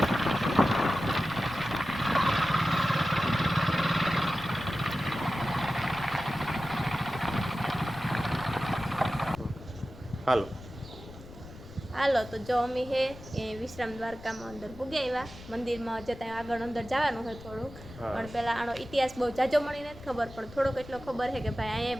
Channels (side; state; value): left; noise; rumble, 17 dB below the sound